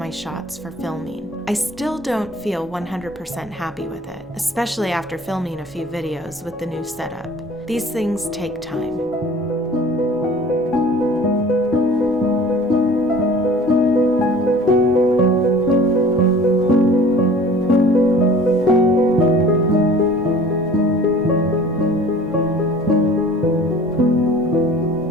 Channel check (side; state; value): both; normal; correlation 0.46